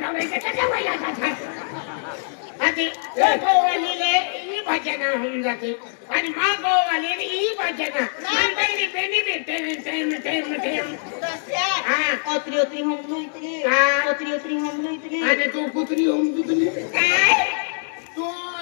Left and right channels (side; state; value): right; silent; 63 dB below the other